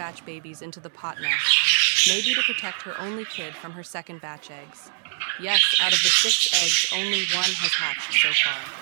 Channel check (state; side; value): silent; left; 63 dB below the other